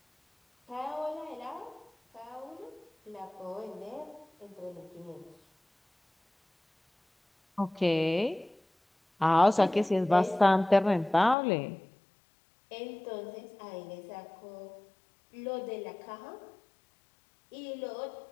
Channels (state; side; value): drops out; right; at 11.4 s